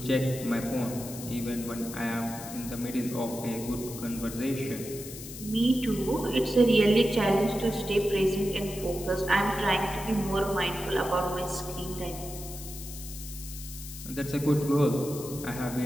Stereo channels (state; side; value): noise; left; hiss, 12 dB below the sound